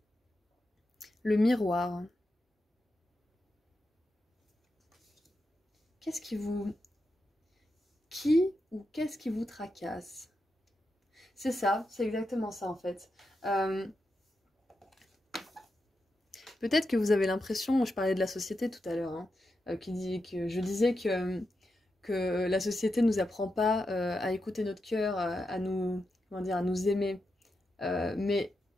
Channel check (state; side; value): normal; both; correlation 0.87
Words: Le miroir. Qu'est-ce qui vous... Qui ou qu'est-ce qui vous tracasse? C'est ça, c'est exactement ça en fait. Peut-être que vous avez l'impression, je parlais de la société tout à l'heure, hein, je disais que la société ne nous apprend pas à écouter notre cœur, à nous, comment dire, à nous aimer. Mais